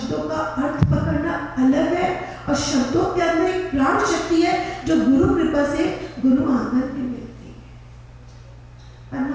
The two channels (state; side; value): identical; both; correlation 1.00